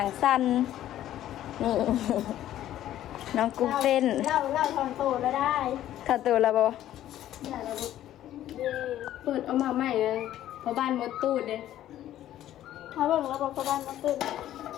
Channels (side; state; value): right; quieter; 12.6 dB